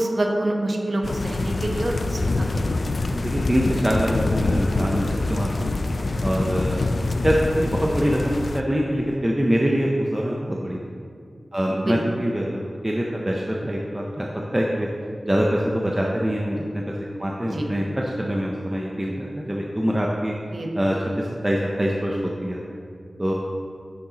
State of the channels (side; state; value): both; normal; correlation 0.96